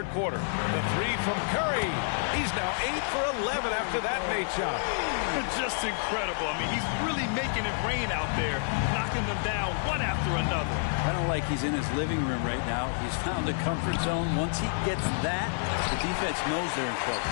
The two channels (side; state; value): right; silent; digital silence